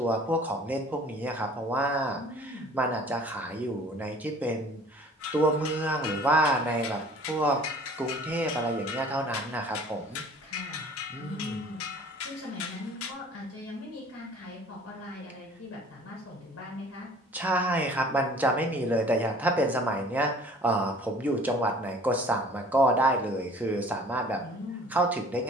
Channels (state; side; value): normal; both; correlation 0.50